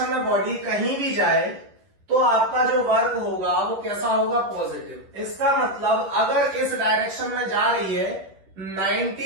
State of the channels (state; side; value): late; left; 11 ms